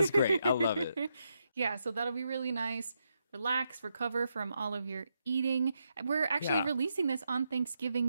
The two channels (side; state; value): both; inverted; correlation -0.82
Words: great. I love it. Yeah, so that'll be really nice. Relax, recover from all of your eating. We're actually releasing this on